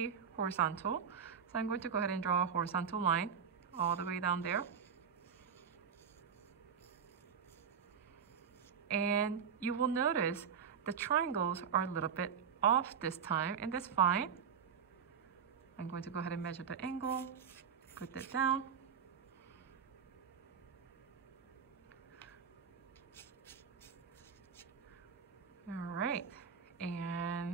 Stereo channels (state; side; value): quieter; left; 7.1 dB